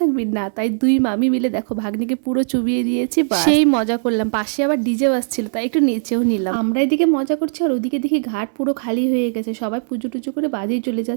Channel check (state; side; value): silent; left; 66 dB below the other